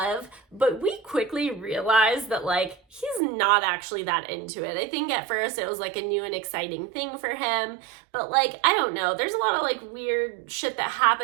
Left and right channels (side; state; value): left; drops out; at 3.2 s